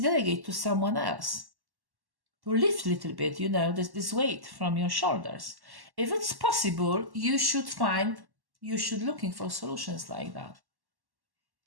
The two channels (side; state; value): left; late; 1.1 ms